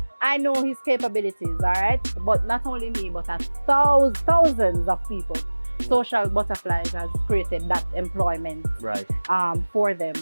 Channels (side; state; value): both; inverted; correlation -1.00